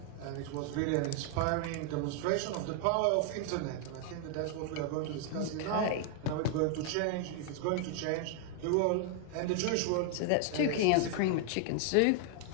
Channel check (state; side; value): different; both; correlation 0.00